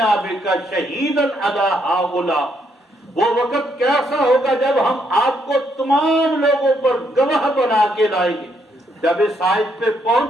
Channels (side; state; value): both; normal; correlation 0.74